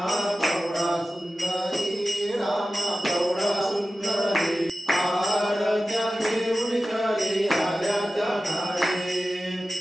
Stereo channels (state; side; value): normal; both; correlation 0.95